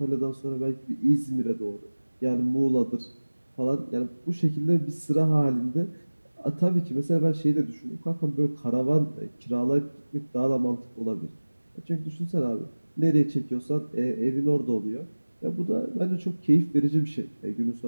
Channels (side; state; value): both; inverted; correlation -1.00